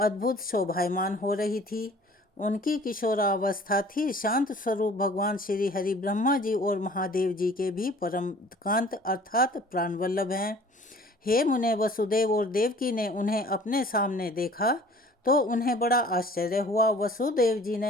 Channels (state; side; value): normal; both; correlation 0.50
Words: शोभायमान हो रही थी। उनकी किशोरावस्था थी। शांत स्वरूप भगवान श्री हरि ब्रह्मा जी और महादेव जी के भी परम कांत अर्थात प्राणवल्लभ हैं। हे मुने, वसुदेव और देवकी ने उन्हें अपने सामने देखा तो उन्हें बड़ा आश्चर्य हुआ। वसुदेव जी